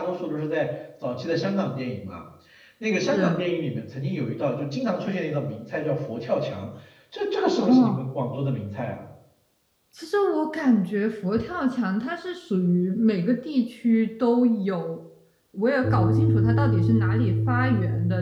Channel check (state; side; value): identical; both; correlation 1.00